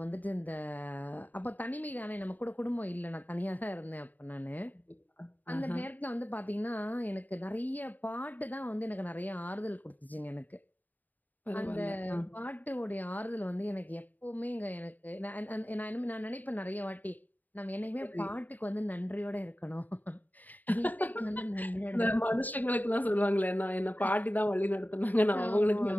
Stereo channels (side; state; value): right; late; 0.083 ms